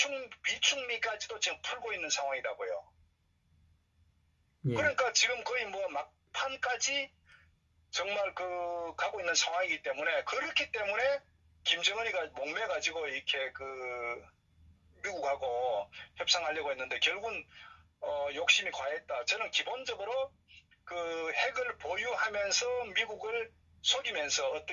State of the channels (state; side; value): identical; both; correlation 1.00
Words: 비축미까지도 지금 풀고 있는 상황이라고요. 그러니까 지금 거의 뭐 막판까지 정말 그 가고 있는 상황이기 때문에 그렇기 때문에 김정은이가 목매가지고 이렇게 그 미국하고 협상하려고 했는데 결국은 욕심이 과했다. 저는 기본적으로 그 핵을 보유하면서 미국을 속이면서